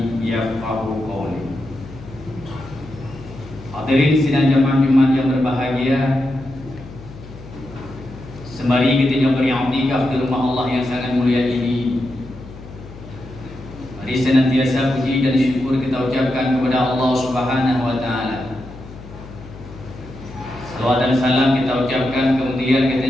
yafqahu qawli. Hadirin sidang jamaah Jumat yang berbahagia, sembari kita beriktikaf di rumah Allah yang sangat mulia ini, mari senantiasa puji dan syukur kita ucapkan kepada Allah Subhanahu wa taala. Salawat dan salam kita ucapkan, kemudian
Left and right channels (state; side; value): noise; left; hum, 16 dB below the sound